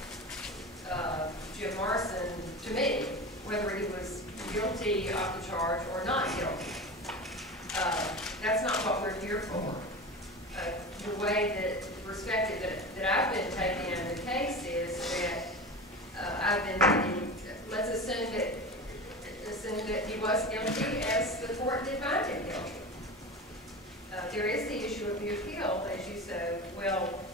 Jim Morrison, to me, whether he was guilty of the charge or not guilty. That's not what we're here for. The way that, the perspective that I've been taking in the case is that I've been thinking, let's assume that he was guilty as the court did find him guilty. There is the issue of the appeal, as you so well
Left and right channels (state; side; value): normal; both; correlation 0.29